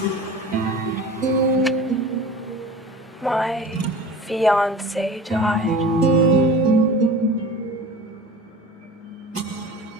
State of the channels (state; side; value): normal; both; correlation 0.37